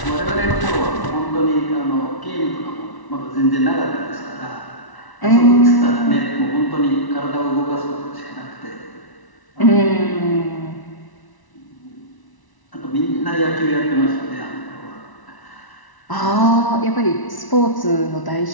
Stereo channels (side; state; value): right; late; 1.0 ms